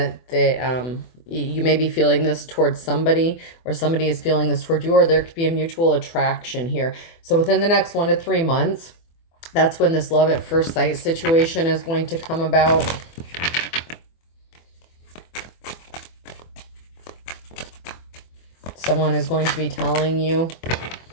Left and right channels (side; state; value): right; late; 24 ms